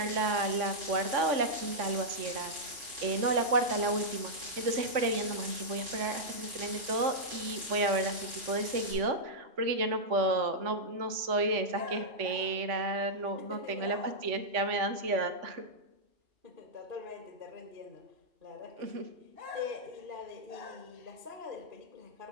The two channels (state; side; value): late; left; 3.5 ms